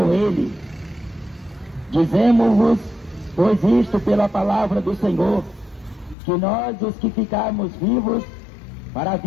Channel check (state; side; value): drops out; right; at 6.2 s